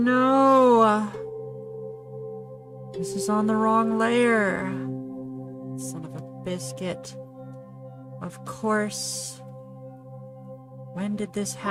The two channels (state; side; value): identical; both; correlation 1.00